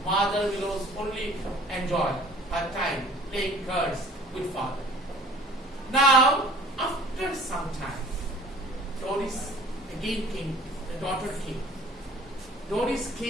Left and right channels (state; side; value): normal; both; correlation 0.50